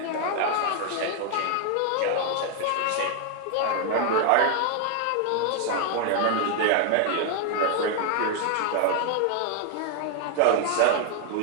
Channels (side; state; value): both; different; correlation 0.00